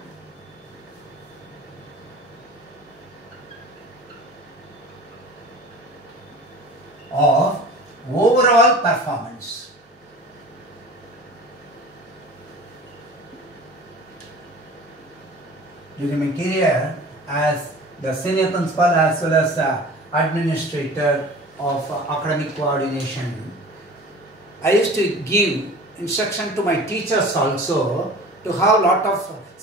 of overall performance. During my career as the senior principal as well as administrator of academic coordination, I used to give instruction to my teachers also to have a lot of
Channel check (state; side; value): normal; both; correlation 0.41